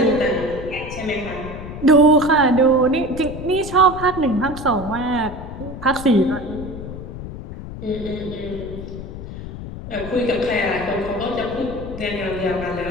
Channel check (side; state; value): left; noise; rumble, 10 dB below the sound